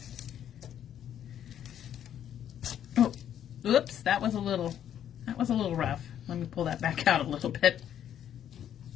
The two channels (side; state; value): right; quieter; 10.1 dB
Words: Oh, oops, that was a little rough. Let me pull that back out a little bit.